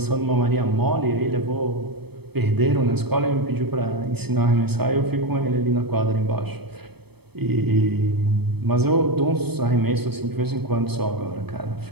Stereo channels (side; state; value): left; late; 0.97 ms